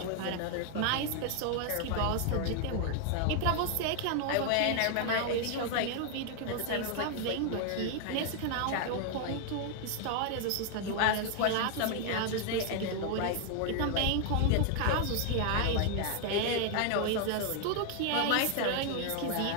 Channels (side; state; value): both; different; correlation 0.00